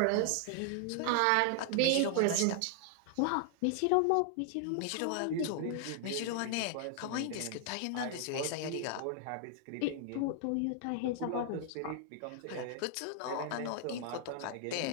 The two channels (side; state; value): both; different; correlation 0.00